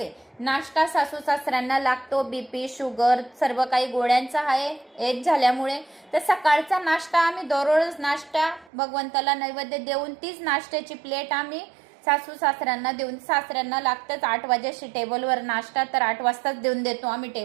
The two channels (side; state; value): left; drops out; at 8.7 s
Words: नाश्ता सासू सासऱ्यांना लागतो, बीपी शुगर सर्व काही गोळ्यांचा आहे एज झाल्यामुळे. तर सकाळचा नाश्ता आम्ही दररोज नाश्ता भगवंताला नैवेद्य देऊन तीच नाश्त्याची प्लेट आम्ही सासू सासऱ्यांना देऊन, सासऱ्यांना लागतंच 8 वाजेशी टेबलवर नाश्ता, तर 8 वाजताच देऊन देतो आम्ही